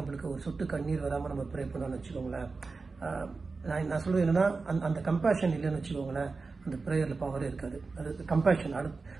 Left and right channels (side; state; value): left; quieter; 4.1 dB